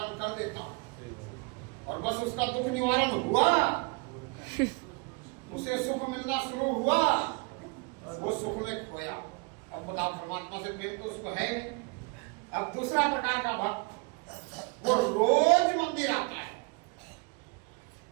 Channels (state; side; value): quieter; left; 29.1 dB